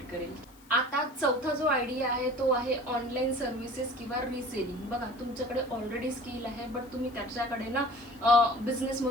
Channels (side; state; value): left; noise; hiss, 26 dB below the sound